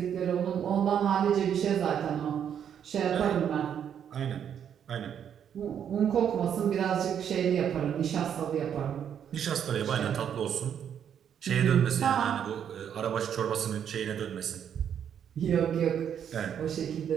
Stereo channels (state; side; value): quieter; left; 8.7 dB